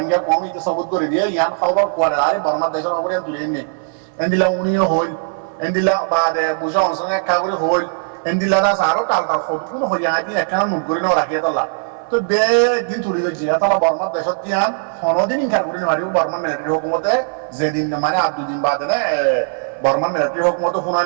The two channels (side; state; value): left; silent; 59 dB below the other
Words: কম ইতে সবুত করে দিয়ে ইয়ান খবর করে আরে বর্মার দেশের খবর তুলে নে এন্দিলা উনিও হইল এন্দিলা বাদে বুঝা অনসনে একা করে হইল এন্দিলা দাস আরো টাল ফটো কোনো হইয়া আইতি একা মুখ করে না রাখিয়া তালা তো বে দিন তুলি দিছি তালা বর্মার দেশত দিয়ান হনদিন ইনকার করে মারিব বর্মার মিলিটারি হুকুমতে যেদিন মানে আর 2 দিন বাদে না বর্মার মিলিটারি হুকুমতে